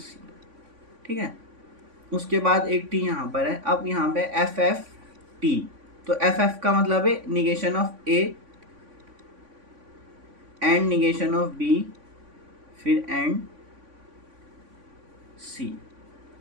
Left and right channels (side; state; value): left; late; 3.5 ms